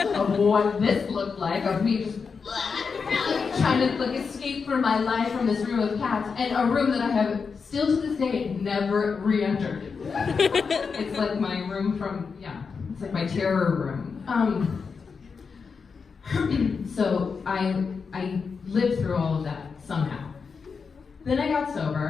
of what this looked like, of me just trying to like escape from my life from this room of cats, and a room that I have still to this day never re-entered. It's like my room from, it's like my terror room. So I lived through all of that somehow. Then I got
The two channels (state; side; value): quieter; right; 5.4 dB